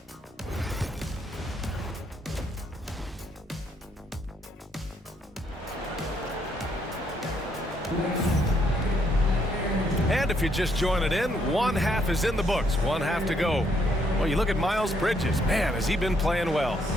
And if you're just joining in, one half is in the books, one half to go. Well, you look at Miles Bridges. Man, has he been playing well.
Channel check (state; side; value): normal; both; correlation 0.72